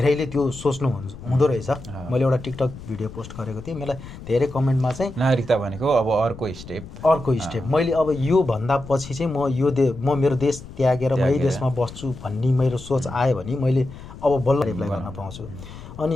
त्यो सोच्नु हुँदो रहेछ। मैले एउटा टिकटक भिडियो पोस्ट गरेको थिएँ, मलाई धेरै कमेन्टमा चाहिँ नागरिकता भनेको अब अर्को स्टेप मैले अब यो भन्दा पछि चाहिँ म मेरो देश त्यागेर म यही देशमा बस्छु भन्ने मेरो सोच आयो भने मैले अब बल्ल एप्लाई गर्न पाउँछु।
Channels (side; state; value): left; noise; rumble, 14 dB below the sound